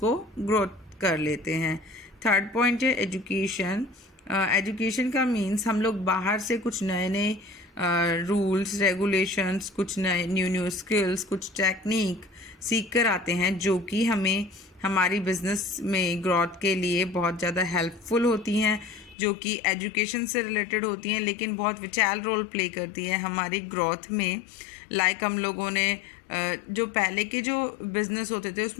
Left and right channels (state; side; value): drops out; right; at 19.2 s